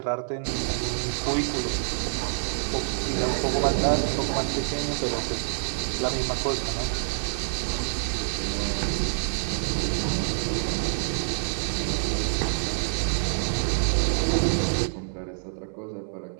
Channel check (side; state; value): left; silent; 60 dB below the other